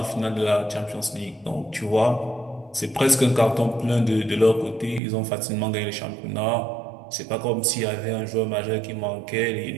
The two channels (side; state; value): left; drops out; at 5.0 s